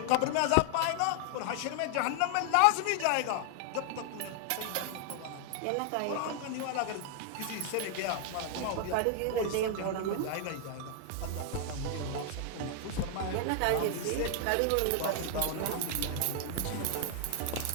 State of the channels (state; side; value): different; both; correlation 0.00